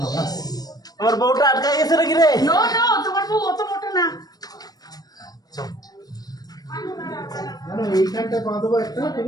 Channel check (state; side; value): late; right; 0.19 ms